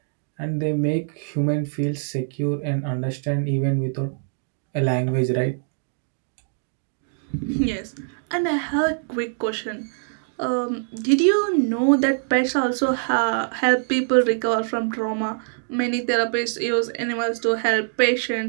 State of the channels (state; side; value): silent; left; digital silence